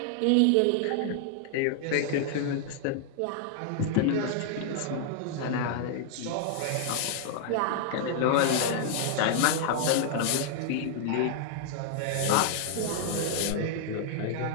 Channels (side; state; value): both; different; correlation -0.01